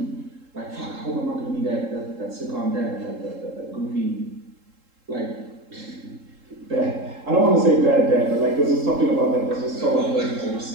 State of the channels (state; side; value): late; left; 3.7 ms